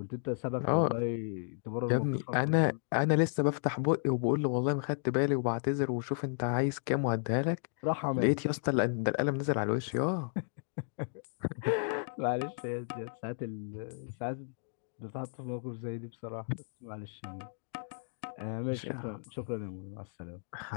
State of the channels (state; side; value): silent; right; digital silence